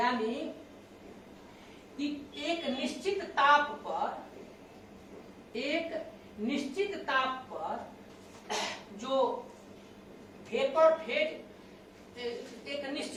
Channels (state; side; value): identical; both; correlation 1.00